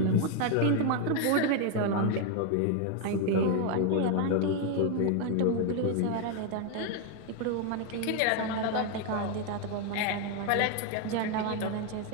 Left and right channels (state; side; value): different; both; correlation 0.01